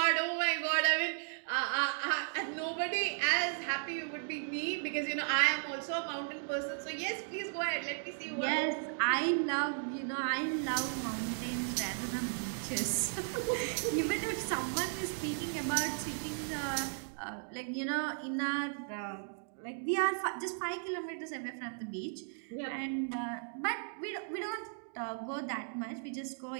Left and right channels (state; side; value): silent; left; digital silence